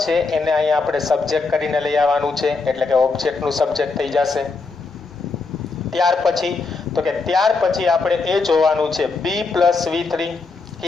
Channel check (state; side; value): quieter; right; 4.1 dB